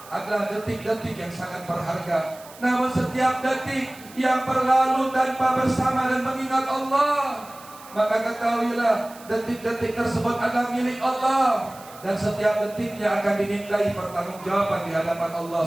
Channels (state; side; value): noise; right; hiss, 20 dB below the sound